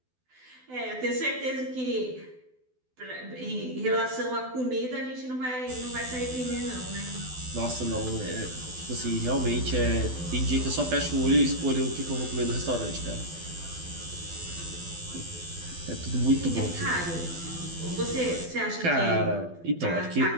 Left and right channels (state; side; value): late; left; 12 ms